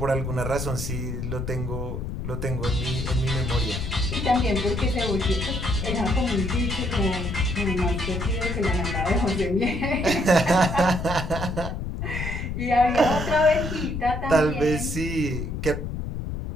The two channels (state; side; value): noise; left; rumble, 4 dB below the sound